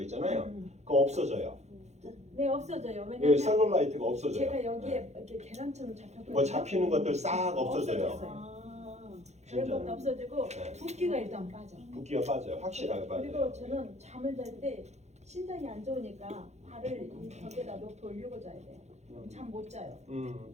있잖아요. 그거 없어져요. 네 없어져요. 예, 왜냐면 셀룰라이트가 없어져요. 제가 여기에 네. 이렇게 계란처럼 잡혔거든요. 뭐 잡히는 것들 싹 없어져요. 그런 진짜. 것도 없어지고 네. 붓기가 일단 빠져. 붓기가 빠져요. 확실하게 빠져요. 그리고 저는 잠을 잘 때 신장이 안 좋으니까 발을 이 벽에다 놓고 올리고 자야 돼요. 잠 못 자요.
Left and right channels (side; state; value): left; late; 0.33 ms